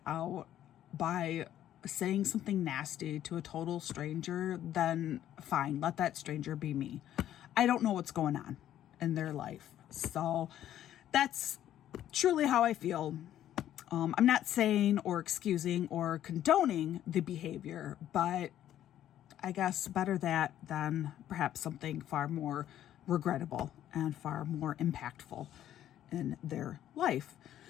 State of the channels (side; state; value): right; quieter; 11.7 dB